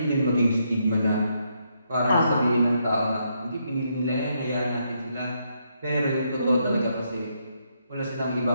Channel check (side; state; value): both; inverted; correlation -0.77